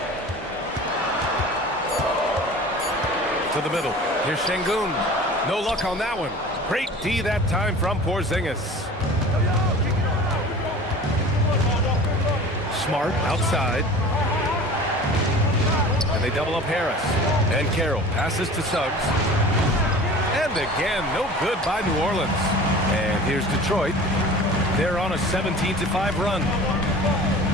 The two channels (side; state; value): both; normal; correlation 0.40